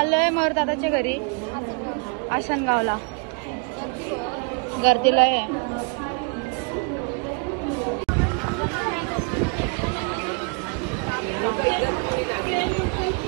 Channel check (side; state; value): left; quieter; 37.3 dB